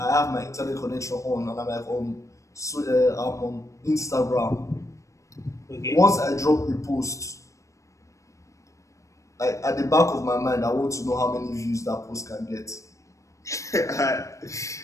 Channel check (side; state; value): right; late; 0.15 ms